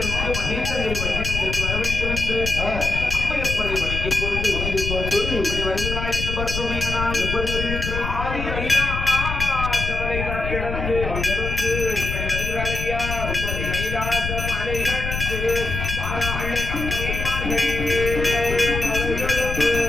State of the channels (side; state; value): left; noise; rumble, 4 dB below the sound